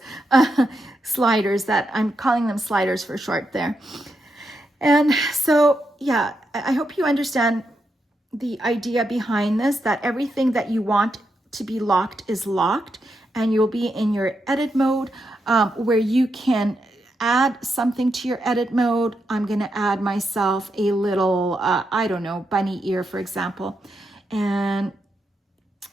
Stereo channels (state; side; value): normal; both; correlation 0.84